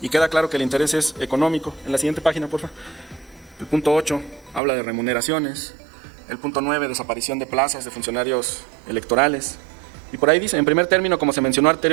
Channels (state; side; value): drops out; left; at 4.6 s